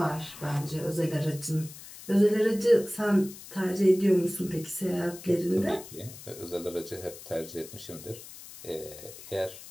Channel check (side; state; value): left; noise; hiss, 15 dB below the sound